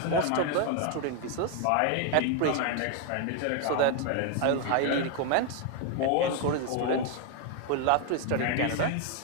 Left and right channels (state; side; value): different; both; correlation 0.01